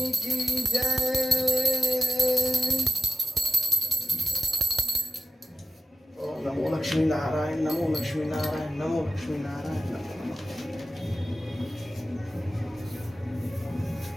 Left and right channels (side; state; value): both; normal; correlation 0.91